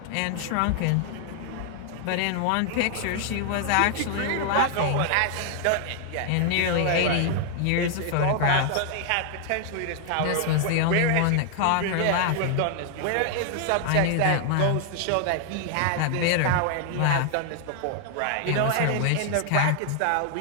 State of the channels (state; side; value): different; both; correlation 0.00